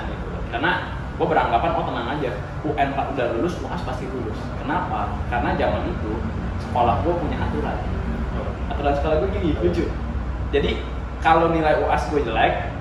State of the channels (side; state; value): both; identical; correlation 1.00